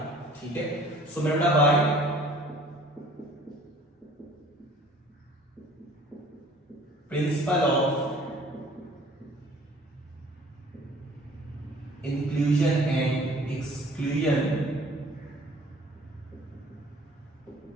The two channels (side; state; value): both; normal; correlation 0.52